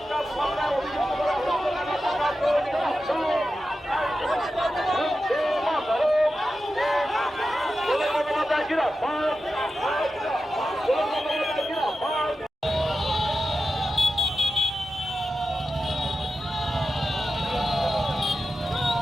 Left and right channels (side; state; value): both; normal; correlation 0.91